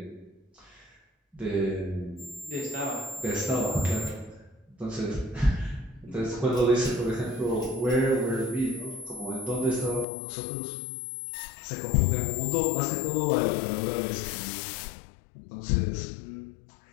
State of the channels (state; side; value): drops out; right; at 10.1 s